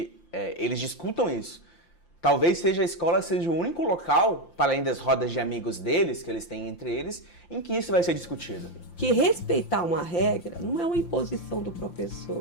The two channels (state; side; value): late; right; 5.8 ms